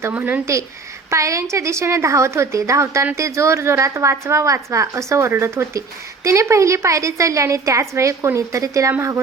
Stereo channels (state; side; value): quieter; left; 4.3 dB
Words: म्हणून ती पायऱ्यांच्या दिशेने धावत होती. धावताना ती जोर जोरात वाचवा वाचवा असं ओरडत होती. तिने पहिली पायरी चढली आणि त्याच वेळी कोणीतरी तिला